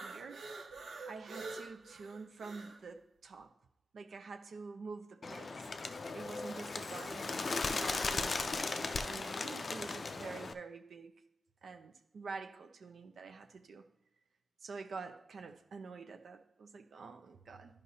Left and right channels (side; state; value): both; normal; correlation 0.90